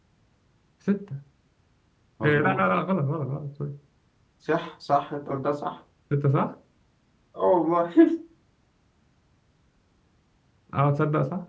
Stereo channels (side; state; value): both; identical; correlation 1.00